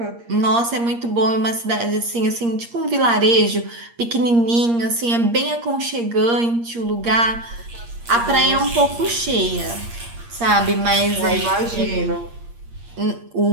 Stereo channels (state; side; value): late; left; 8.6 ms